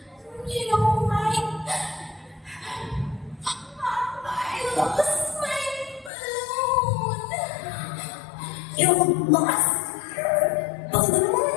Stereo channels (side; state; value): right; drops out; at 6.1 s